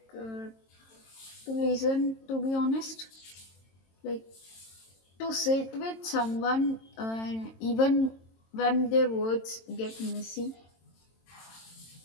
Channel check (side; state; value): right; late; 22 ms